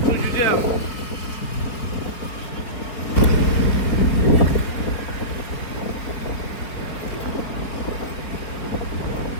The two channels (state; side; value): late; right; 4.3 ms